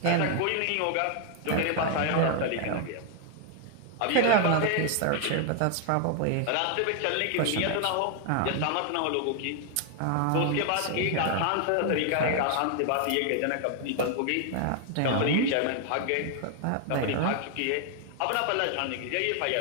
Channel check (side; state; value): both; different; correlation 0.00